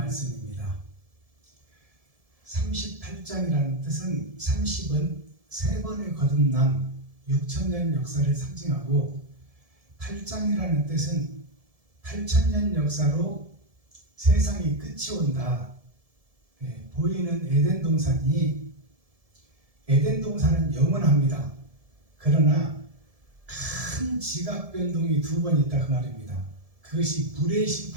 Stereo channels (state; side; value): late; left; 1.7 ms